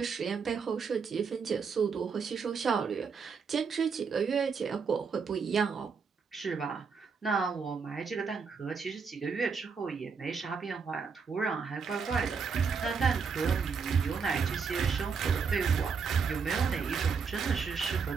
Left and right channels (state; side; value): quieter; left; 5.6 dB